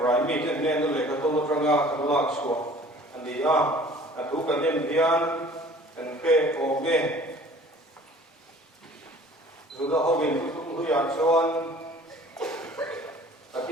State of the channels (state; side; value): normal; both; correlation 0.49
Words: itu ni tu lek atau terangga kelak suah, andi atu kanen dian, pe oge, sudah hobin kutung huyan suan,